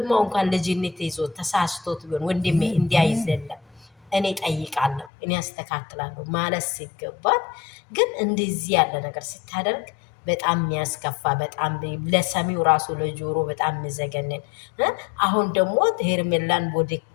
እንኳን ልጅነት ይዞ ተሳስቶት ቢሆን ወንድሜ እንዲያይዘለም እኔ ጠይቃለሁ፣ እኔ አስተካክላለሁ ማለት ሲገባት ግን እንደዚህ ያለ ነገር ስታደርግ በጣም የሚያስከፋ በጣም ለሰሚው ራሱ ለጆሮ በጣም የሚዘገንን። አሁን ደግሞ ሄርሜላን ወደ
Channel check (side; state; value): right; drops out; at 5.1 s